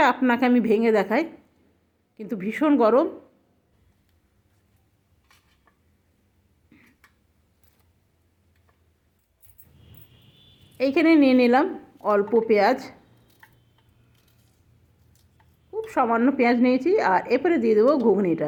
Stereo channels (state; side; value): identical; both; correlation 1.00